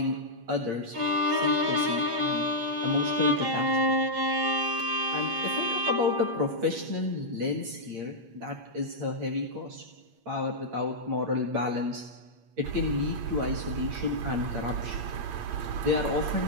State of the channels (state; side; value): late; left; 8.6 ms